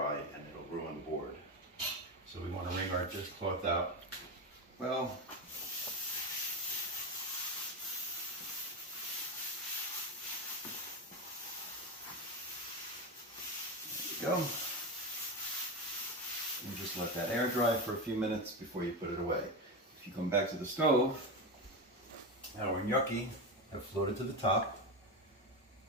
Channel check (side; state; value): both; normal; correlation 0.17